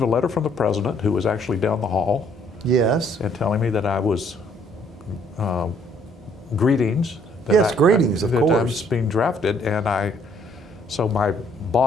a letter from the president, who was actually down the hall, Yes. and telling me that I was, greetings. Yes, greetings, of that I was course. being drafted. And so my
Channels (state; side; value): normal; both; correlation 0.65